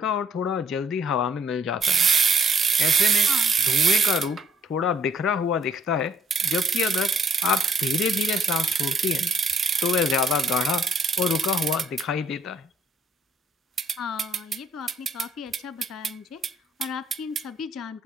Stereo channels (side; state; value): both; normal; correlation 0.66